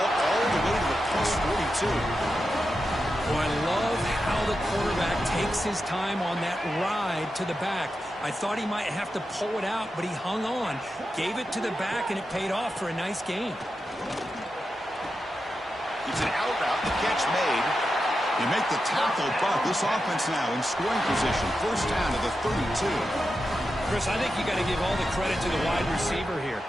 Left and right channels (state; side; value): normal; both; correlation 0.89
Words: all the way to the +42. Well, I love how the quarterback takes his time on that ride to the back. I thought he might have to pull it out, but he hung on. Gave it to the back, and it paid off for a nice gain. It's an out route, the catch made. You make the tackle, but this offense now in scoring position. 1st down to the 32. Chris, I think you got to give all the credit to the wide receiver here.